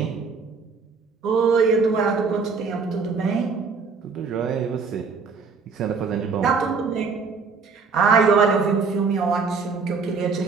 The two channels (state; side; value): quieter; left; 5.0 dB